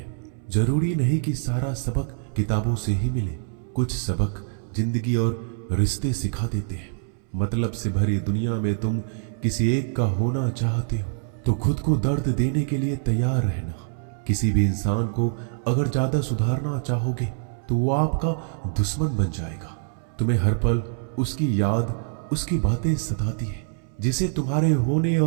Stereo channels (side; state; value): left; silent; 62 dB below the other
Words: जरूरी नहीं कि सारा सबक किताबों से ही मिले। कुछ सबक जिंदगी और रिश्ते सिखा देते हैं। मतलब से भरी दुनिया में तुम किसी एक का होना चाहते हो तो खुद को दर्द देने के लिए तैयार रहना। किसी भी इंसान को अगर ज्यादा सुधारना चाहोगे तो वो आपका दुश्मन बन जाएगा। तुम्हें हर पल उसकी याद, उसकी बातें सताती है, जिसे तुम्हारे होने